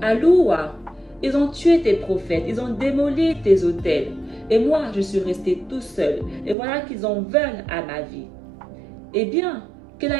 Aloua, ils ont tué tes prophètes, ils ont démoli tes autels. Et moi, je suis resté tout seul. Et voilà qu'ils en veulent à ma vie. Eh bien, quelle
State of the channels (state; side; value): drops out; left; at 6.6 s